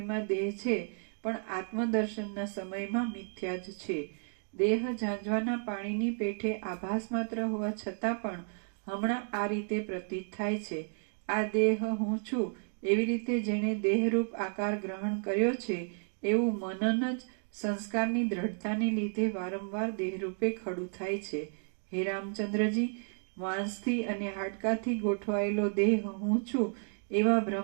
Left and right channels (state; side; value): silent; left; 56 dB below the other